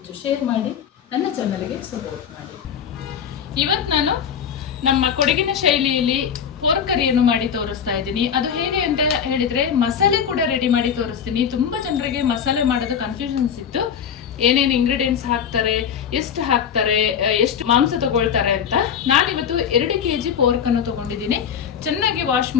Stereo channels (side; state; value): right; quieter; 7.8 dB